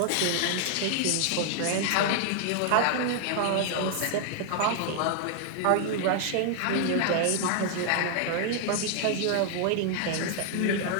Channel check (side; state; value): both; different; correlation 0.00